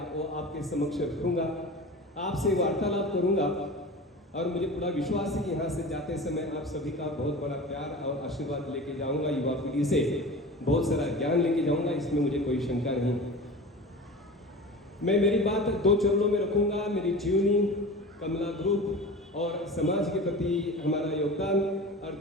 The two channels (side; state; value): both; normal; correlation 0.34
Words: वो आपके समक्ष रखूंगा, आपसे वार्तालाप करूंगा। और मुझे पूरा विश्वास है कि यहाँ से जाते समय आप सभी का बहुत बड़ा प्यार और आशीर्वाद लेके जाऊंगा। युवा पीढ़ी से बहुत सारा ज्ञान लेके जाऊंगा, इसमें मुझे कोई शंका नहीं। मैं मेरी बात 2 चरणों में रखूंगा, मेरी जीवनी, कमला ग्रुप और समाज के प्रति हमारा योगदान, और